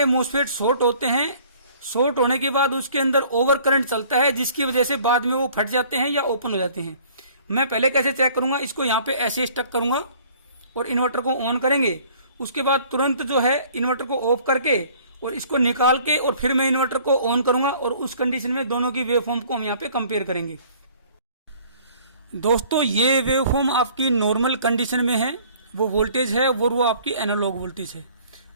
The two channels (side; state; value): both; inverted; correlation -0.54